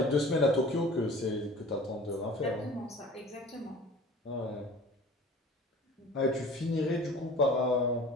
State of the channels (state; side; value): normal; both; correlation 0.43